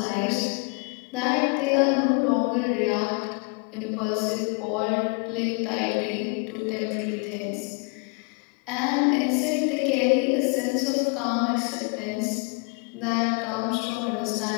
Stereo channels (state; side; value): quieter; right; 33.6 dB